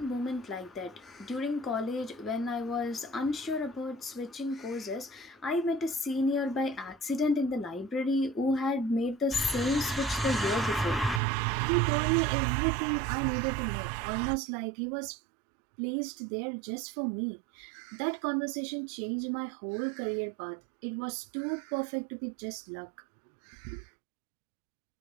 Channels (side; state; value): left; drops out; at 11.2 s